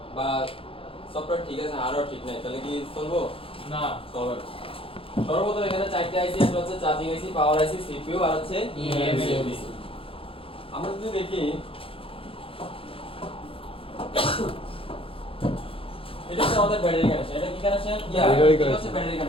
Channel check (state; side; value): late; right; 0.27 ms